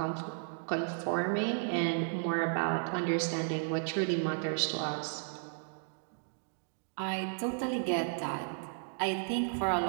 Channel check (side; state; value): left; silent; digital silence